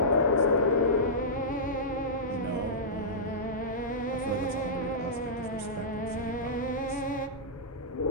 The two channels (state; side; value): normal; both; correlation -0.15